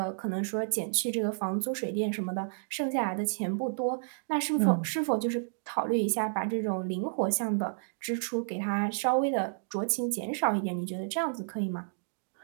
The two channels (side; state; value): left; silent; digital silence